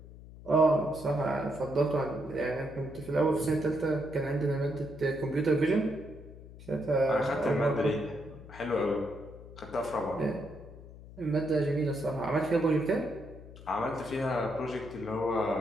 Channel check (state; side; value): noise; left; hum, 17 dB below the sound